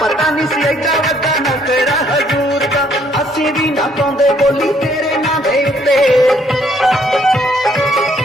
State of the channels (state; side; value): normal; both; correlation 0.66